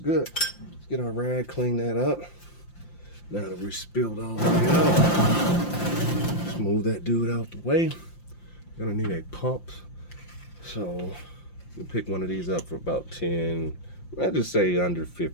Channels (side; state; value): right; late; 5.8 ms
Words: Let's get our rag, clean that up. Now that we spilled all the way out, smooth that dude out the way. Gonna need a pump. So you pick one of these up for about 10, I'd just say under